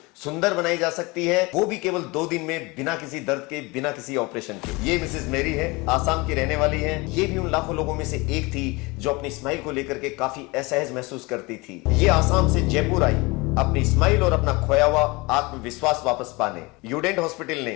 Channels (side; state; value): right; quieter; 24.9 dB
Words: सुंदर बनाई जा सकती है, वो भी केवल 2 दिन में, बिना किसी दर्द के, बिना किसी ऑपरेशन के। ये मिसेज मेरी है, आसाम की रहने वाली है। ये भी उन लाखों लोगों में से एक थी जो अपनी स्माइल को लेकर के काफी असहज महसूस करती थी। ये आसाम से जयपुर आई अपनी स्माइल और अपना खोया हुआ आत्मविश्वास वापस पाने। यूडेंट हॉस्पिटल ने